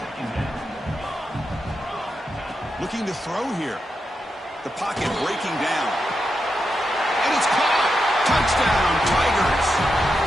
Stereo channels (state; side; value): normal; both; correlation 0.86